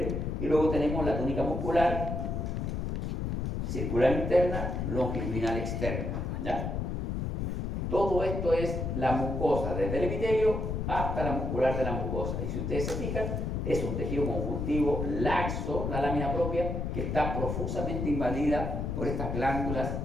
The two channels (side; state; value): left; noise; rumble, 2 dB below the sound